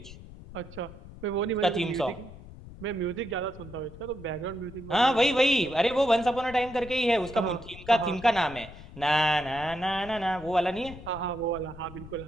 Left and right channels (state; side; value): noise; left; rumble, 16 dB below the sound